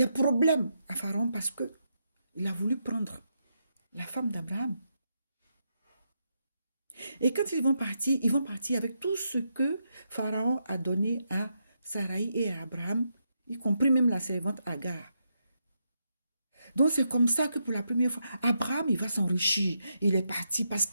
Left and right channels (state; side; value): inverted; both; correlation -0.82